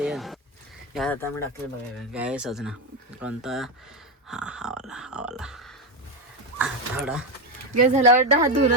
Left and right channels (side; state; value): both; normal; correlation 0.11